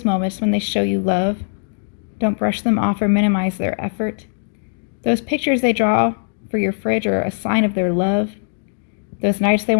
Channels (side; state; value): right; silent; digital silence